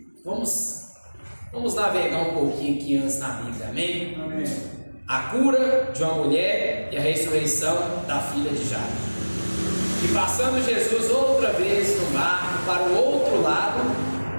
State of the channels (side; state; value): both; inverted; correlation -1.00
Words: 1. Vamos navegar um pouquinho aqui antes na Bíblia, amém? Amém. A cura de uma mulher e a ressurreição da filha de Jairo. E passando Jesus outra vez no barco para o outro lado,